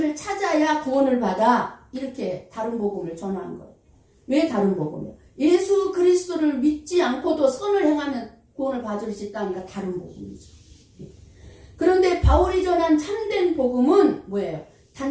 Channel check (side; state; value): both; identical; correlation 1.00